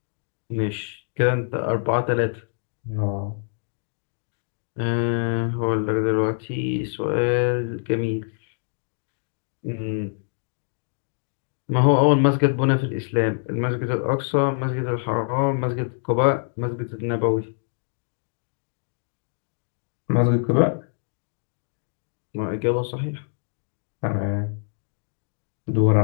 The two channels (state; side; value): silent; right; digital silence